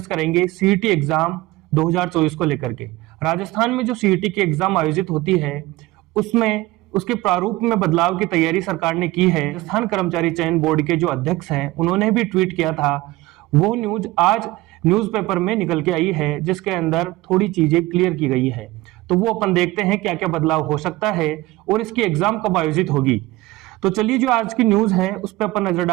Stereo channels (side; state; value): left; quieter; 18.9 dB